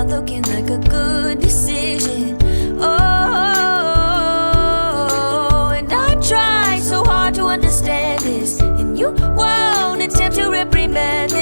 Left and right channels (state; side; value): inverted; both; correlation -1.00